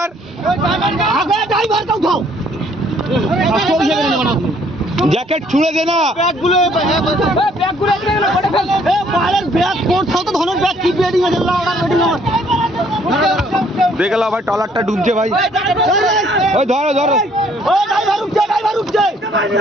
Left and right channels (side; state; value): both; normal; correlation 0.63